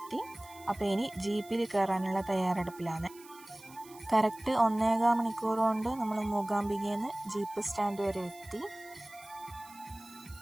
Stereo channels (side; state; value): right; noise; hiss, 21 dB below the sound